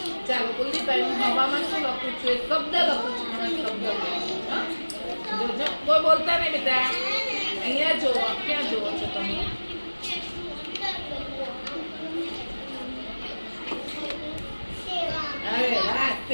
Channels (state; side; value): inverted; both; correlation -1.00